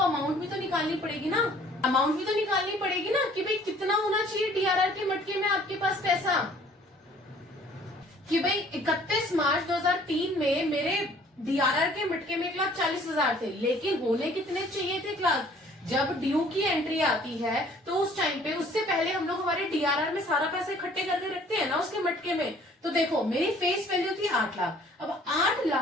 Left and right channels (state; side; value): normal; both; correlation 0.55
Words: अमाउंट भी तो निकालनी पड़ेगी ना, अमाउंट भी तो निकालनी पड़ेगी ना, कि भाई कितना होना चाहिए डीआरआर के मटके में आपके पास पैसा, कि भाई 31 मार्च 2003 में मेरे डीआरआर के मटके में 1,40,000 थे, लेकिन होने कितने चाहिए थे क्लास? जब ड्यू की एंट्री आती है तो उस टाइम पे, उससे पहले हम लोग हमारे डीआरआर में सारा पैसा इकट्ठे करके रखते हैं ना उसके मटके में। तो देखो मेरी फेस वैल्यू थी 8 लाख, अब 8